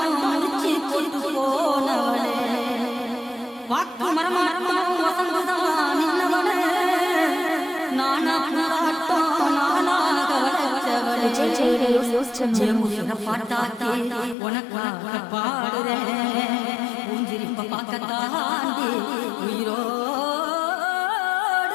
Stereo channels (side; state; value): right; drops out; at 14.4 s